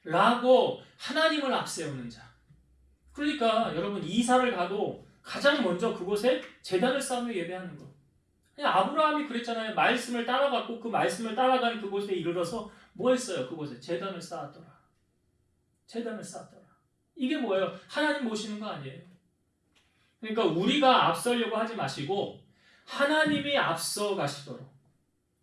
라고 하나님을 앞세우는 자. 그러니까 여러분 이사를 가도 가장 먼저 그곳에 제단을 쌓으며 예배하는 거. 그냥 아브라함이 그랬잖아요. 말씀을 따라갔고 그 말씀을 따라간 그곳에 이르러서 뭐 했어요? 그곳에 제단을 쌓았더라. 제단을 쌓았더라. 이게 뭐예요? 하나님 모시는 거 아니에요. 그러니까 우리가 앞서려고 하지 마시고 하나님이 앞서 가시도록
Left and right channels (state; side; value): identical; both; correlation 1.00